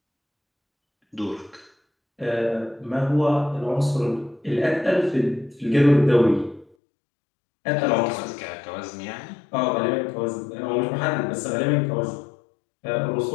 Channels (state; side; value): drops out; right; at 6.7 s